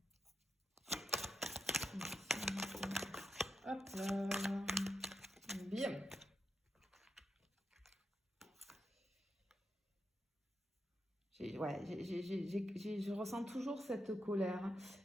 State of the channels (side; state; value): both; normal; correlation 0.85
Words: Hop là. Bien. Je ressens toujours cette colère.